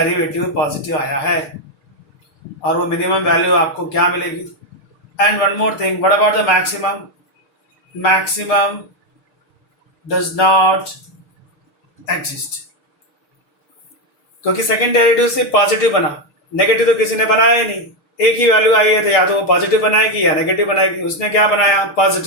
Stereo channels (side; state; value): right; late; 6.7 ms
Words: पॉजिटिव आया है. और वो मिनिमम वैल्यू आपको क्या मिलेगी? And one more thing, what about the maximum? Maximum does not exist. क्योंकि सेकेंड डेरिवेटिव से पॉजिटिव बना, नेगेटिव तो किसी ने बनाया ही नहीं. एक ही वैल्यू आई है तो या तो वो पॉजिटिव बनाएगी या नेगेटिव बनाएगी. उसने क्या बनाया?